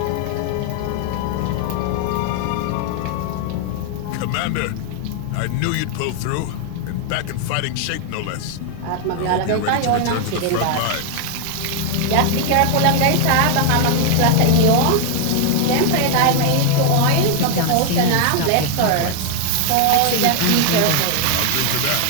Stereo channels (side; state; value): both; different; correlation 0.00